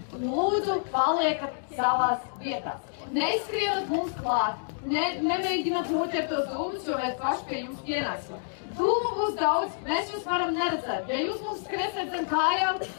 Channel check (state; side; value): silent; right; digital silence